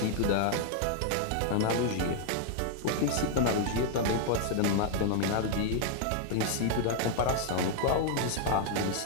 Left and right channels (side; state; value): both; different; correlation 0.00